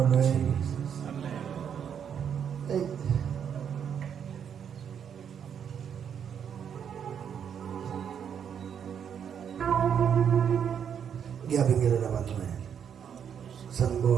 Hey. Ngiyabingelela abantwana.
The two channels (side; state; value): left; quieter; 8.1 dB